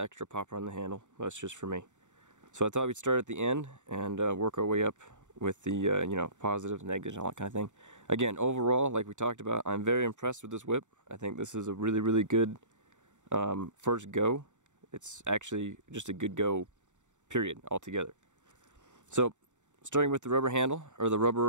extra popper on the handle, that's just for me. So I thought we'd start at the end and work our way up with the positives, negatives, and all that kind of thing. Again, overall, like we talked about, I'm very impressed with this whip. I think this is a really, really good first go. It's actually just a good go, period, altogether. So, starting with the rubber handle, or the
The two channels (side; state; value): left; late; 0.85 ms